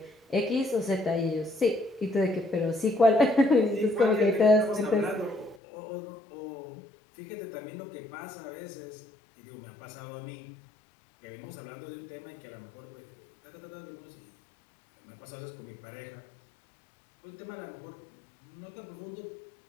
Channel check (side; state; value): right; drops out; at 5.6 s